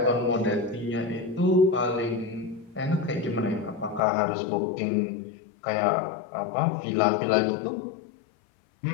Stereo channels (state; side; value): drops out; right; at 4.0 s